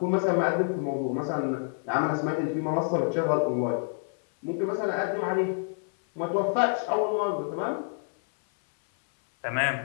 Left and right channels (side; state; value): right; silent; 60 dB below the other